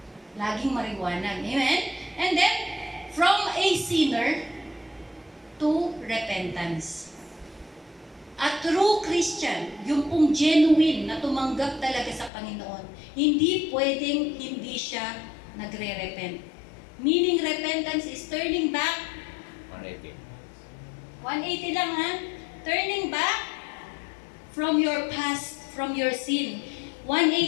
Laging mariwanag. Amen? And then, from a sinner to repentance. A true Christian, yung pong genuine na tumanggap talaga sa Panginoon, hindi pwedeng hindi siya nagre-repent. Meaning repentance is turning back 180 lang ha. Turning back from your past, from your sin.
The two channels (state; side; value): drops out; right; at 12.3 s